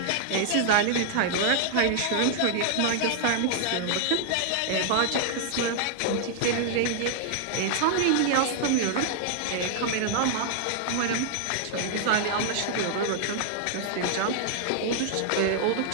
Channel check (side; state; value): both; different; correlation -0.01